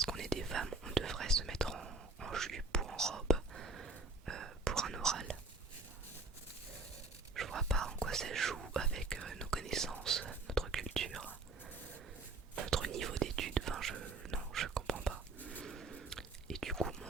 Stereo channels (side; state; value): left; quieter; 3.6 dB